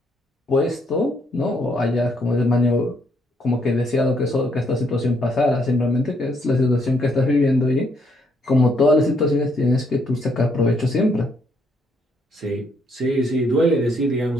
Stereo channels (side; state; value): both; normal; correlation 0.71